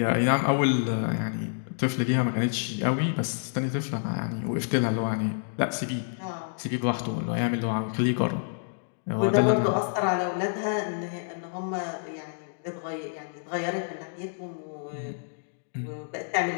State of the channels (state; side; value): silent; right; digital silence